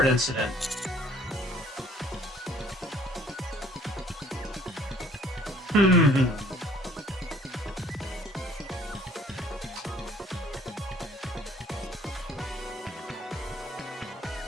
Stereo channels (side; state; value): both; normal; correlation 0.56